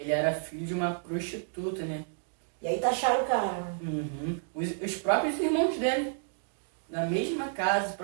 ele era filho de uma prostituta, né? E aí taxaram o cara. Uhum. Os próprios irmãos dele, na mesma casa, o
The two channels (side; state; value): left; silent; digital silence